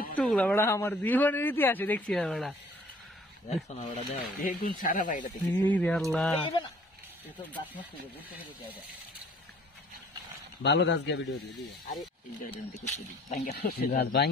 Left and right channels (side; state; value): both; normal; correlation 0.55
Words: একটু বেড়া আমার জীবনের ইতিহাসে দেখছি না বেড়া। দেখছো না ওটা দাও বেগুন সারা বাইরে থেকে এই রে আল্লাহ এতো গাছ নষ্ট করে বুঝতে পেরে যায় ভালো গাছ গিয়ে ভিডিও দিয়ে দিও। আরে এই গাছটা দেখতে দি গাছ